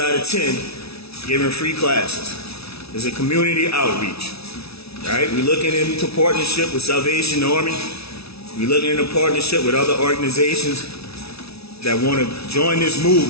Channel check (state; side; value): late; right; 0.78 ms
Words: of 10, giving free classes. It's a community outreach. Right? We're looking into partnership with Salvation Army. We're looking into partnership with other organizations that want to join this